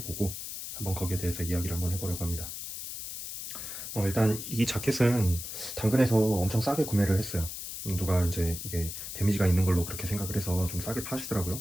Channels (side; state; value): left; noise; hiss, 7 dB below the sound